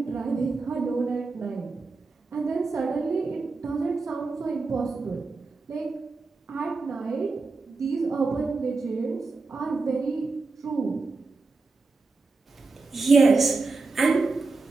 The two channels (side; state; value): left; quieter; 3.9 dB